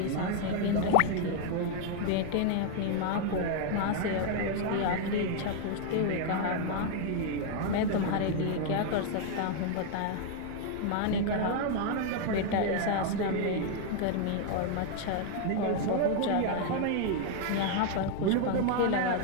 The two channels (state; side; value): different; both; correlation 0.00